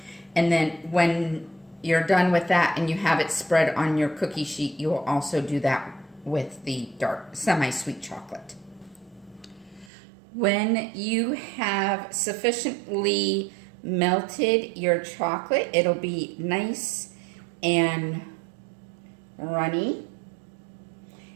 And then when you're done with that and you have it spread on your cookie sheet, you will also do that with the dark semi-sweet chocolate. When you have sufficiently melted your chocolate, it'll be nice and runny.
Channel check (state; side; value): drops out; left; at 9.9 s